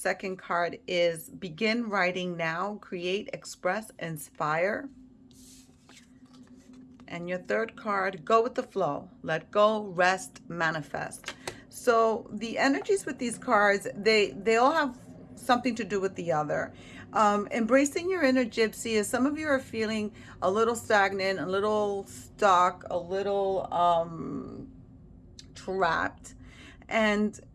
card is Begin Writing Now, Create, Express, Inspire. And your third card, Go with the Flow, Let Go, Rest, Manifest. So the energies with these cards, they all have something to do with the other. Embracing your inner gypsy is some of you are feeling a little stagnant, a little stuck, a little trapped. And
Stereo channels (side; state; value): both; identical; correlation 1.00